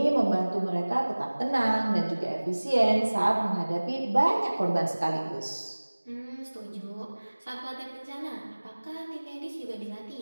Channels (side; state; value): both; inverted; correlation -1.00